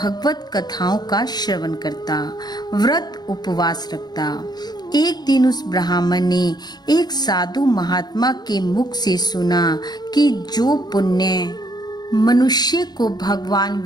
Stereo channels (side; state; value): right; late; 0.20 ms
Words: कथाओं का श्रवण करता, व्रत उपवास रखता। एक दिन उस ब्राह्मण ने एक साधु महात्मा के मुख से सुना कि जो पुण्य मनुष्य को भगवान